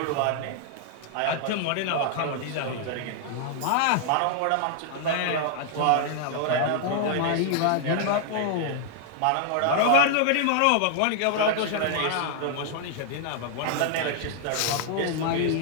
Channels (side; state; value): both; different; correlation -0.01